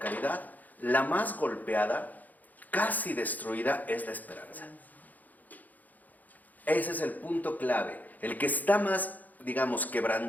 la más golpeada, casi destruida, es la esperanza. Ese es el punto clave. El que está más, digamos,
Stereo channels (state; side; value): late; right; 0.081 ms